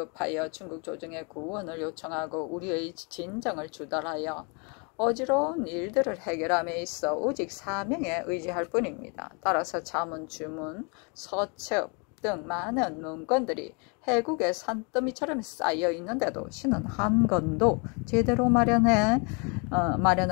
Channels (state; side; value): quieter; right; 34.3 dB